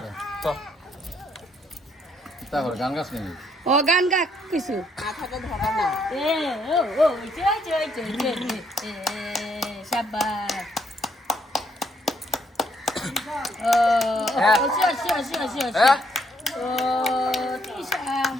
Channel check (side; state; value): both; normal; correlation 0.71